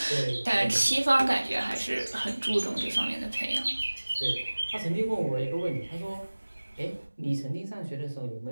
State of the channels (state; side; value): inverted; both; correlation -1.00